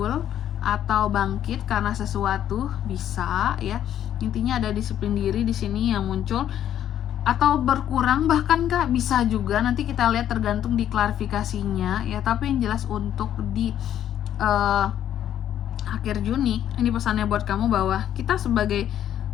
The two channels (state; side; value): quieter; right; 10.7 dB